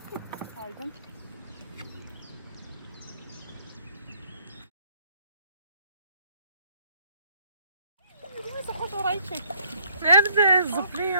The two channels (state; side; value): inverted; both; correlation -0.63